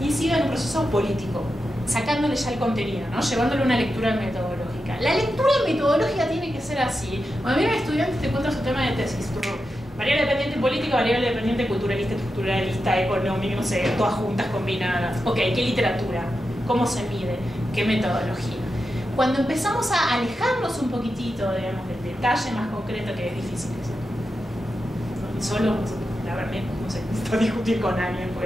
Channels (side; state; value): both; normal; correlation 0.89